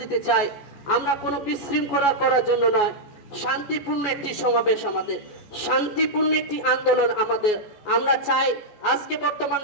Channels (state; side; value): late; right; 14 ms